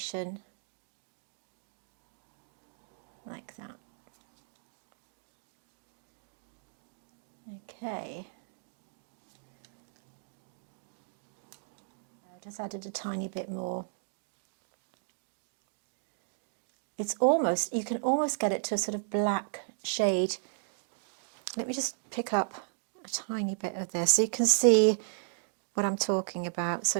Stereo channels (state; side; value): silent; left; digital silence